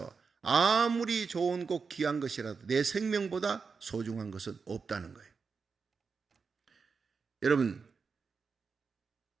아무리 좋은 것 귀한 것이라도 내 생명보다 소중한 것은 없다는 거예요. 여러분,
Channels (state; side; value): quieter; left; 5.2 dB